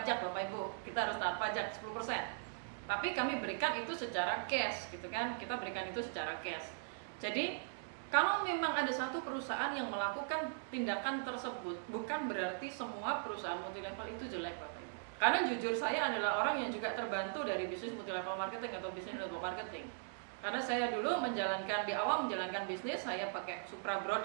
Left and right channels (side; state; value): left; silent; digital silence